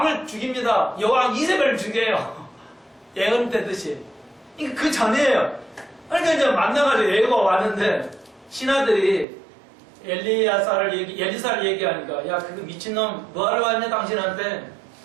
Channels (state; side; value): drops out; left; at 9.2 s